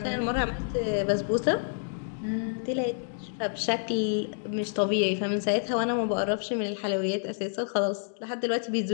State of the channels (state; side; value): silent; right; digital silence